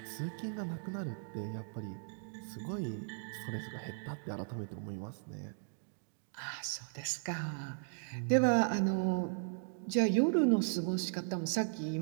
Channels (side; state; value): left; silent; digital silence